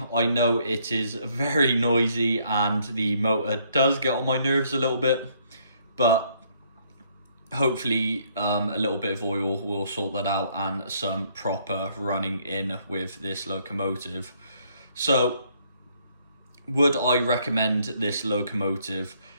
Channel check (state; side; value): inverted; both; correlation -0.67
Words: I know it is very noisy and the motor does get on my nerves a little bit, but hopefully a little bit of oil will sort that out and some proper running in with this locomotive. So, would I recommend this locomotive?